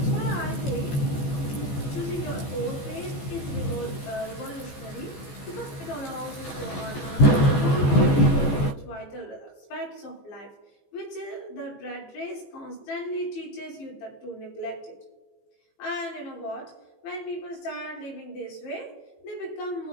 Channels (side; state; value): right; late; 14 ms